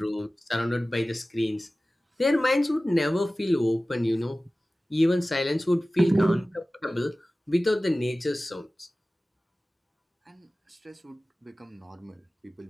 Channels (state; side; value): normal; both; correlation 0.97